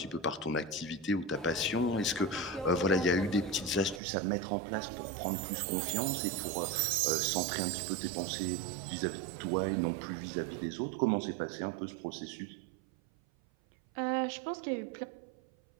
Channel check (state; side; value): drops out; left; at 4.0 s